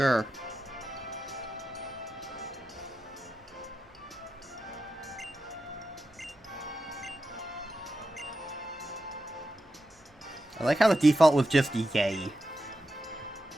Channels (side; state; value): both; normal; correlation 0.90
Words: I like how the default was just yay.